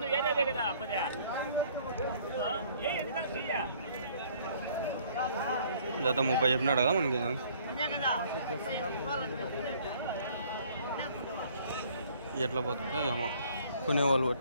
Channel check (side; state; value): both; inverted; correlation -0.58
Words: జత 30 చెప్పినాడు కదా మనకి ఎట్లా పోతుందో ఏమో కొనేవాళ్ళు